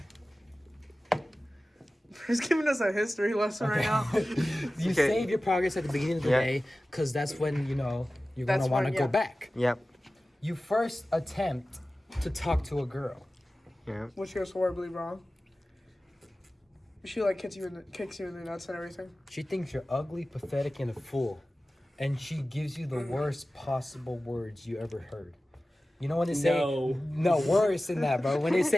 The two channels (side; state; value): both; normal; correlation 0.96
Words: He's giving us a history lesson right now. You save your progress at the beginning of the day, because that's when you're That's gonna want to when- go yeah. back. Yep. You first attempt to talk to a girl. Yeah. Which goes horribly wrong. She like kicks you in the nuts and everything. She thinks you're ugly, pathetic, and a fool, and she gives you the worst possible words you ever heard. You know when they say no worse than that, bro. When they